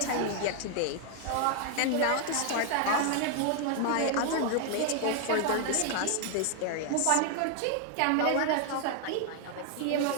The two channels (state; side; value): different; both; correlation 0.00